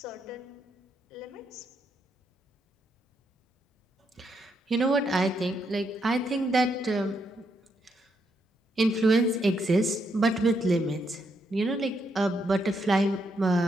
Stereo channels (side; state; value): both; normal; correlation 0.78